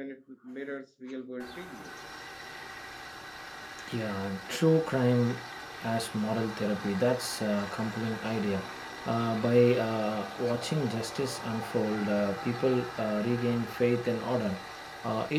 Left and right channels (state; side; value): identical; both; correlation 1.00